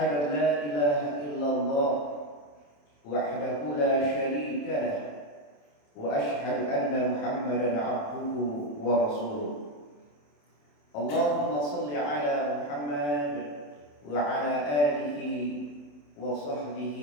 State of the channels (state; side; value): late; right; 27 ms